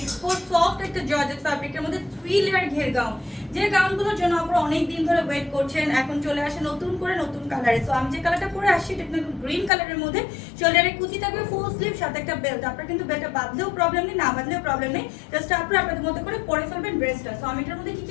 সফট একটা জর্জেট ফ্যাব্রিকের মধ্যে 3 লেয়ার ঘের গাউন, যে গাউনগুলোর জন্য আপনারা অনেক দিন ধরে ওয়েট করছেন। এখন চলে আসে নতুন করে নতুন কালারে। সো আমি যে কালারটা পরে আসছি এটা কিন্তু গ্রিন কালারের মধ্যে। শোল্ডারে কুচি থাকবে, ফুল স্লিভ, সাথে একটা বেল্ট। আপনারা কিন্তু বেল্টটা বাঁধলেও প্রবলেম নেই, না বাঁধলেও প্রবলেম নেই, জাস্ট আপনারা আপনাদের মতো করে পরে ফেলবেন ড্রেসটা। সো আমি এটার মধ্যে কি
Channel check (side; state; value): right; drops out; at 9.7 s